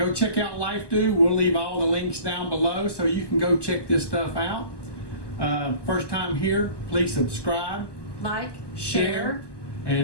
check out Lifedoo. We'll leave all the links down below so you can go check this stuff out. First time here, please subscribe, Like, share, share,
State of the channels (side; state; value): right; late; 1.2 ms